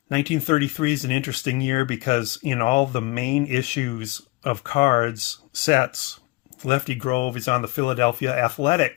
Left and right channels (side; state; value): right; quieter; 22.9 dB